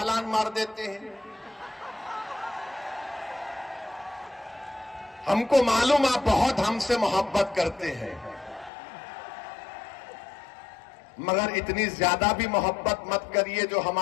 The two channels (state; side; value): drops out; right; at 8.7 s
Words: मार देते हैं। हमको मालूम आप बहुत हमसे मोहब्बत करते हैं, मगर इतनी ज्यादा भी मोहब्बत मत करिए जो